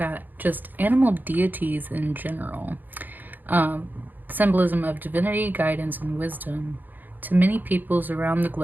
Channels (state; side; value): late; left; 0.087 ms